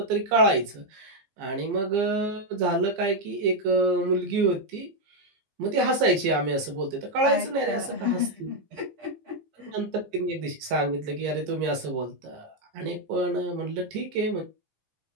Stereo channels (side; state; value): left; late; 15 ms